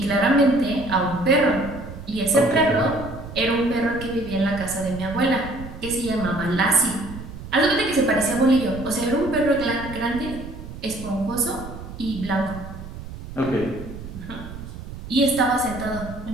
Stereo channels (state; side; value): noise; right; rumble, 12 dB below the sound